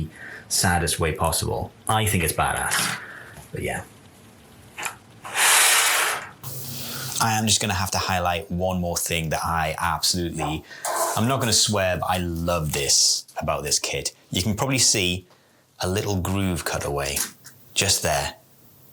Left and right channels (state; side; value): identical; both; correlation 1.00